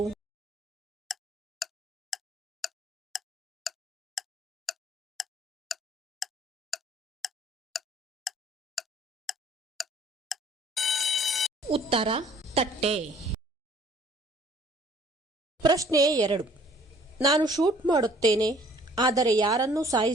ಉತ್ತರ ತಟ್ಟೆ. ಪ್ರಶ್ನೆ 2. ನಾನು ಶೂಟ್ ಮಾಡುತ್ತೇನೆ, ಆದರೆ ಯಾರನ್ನೂ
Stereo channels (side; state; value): both; normal; correlation 0.56